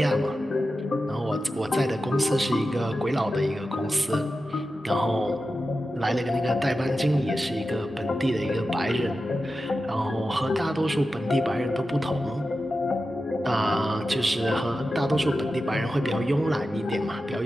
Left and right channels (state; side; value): normal; both; correlation 0.92